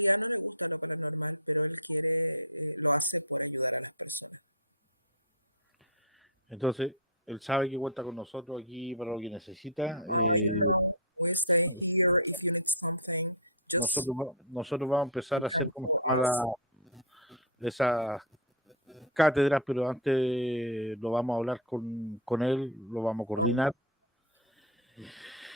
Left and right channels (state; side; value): normal; both; correlation -0.03